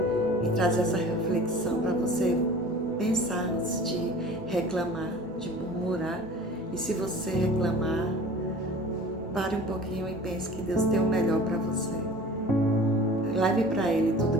E traz essa reflexão para você pensar antes de reclamar, de murmurar. E se você reclamar, pare um pouquinho e pense que Deus tem o melhor para você. Leve para Ele tudo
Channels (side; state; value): both; normal; correlation 0.42